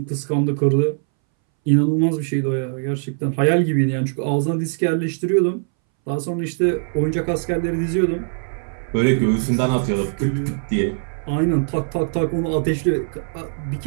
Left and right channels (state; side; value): silent; left; 63 dB below the other